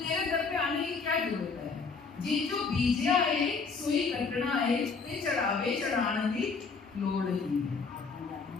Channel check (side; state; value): right; quieter; 4.8 dB